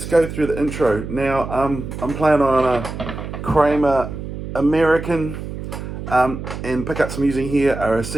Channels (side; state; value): right; noise; hum, 8 dB below the sound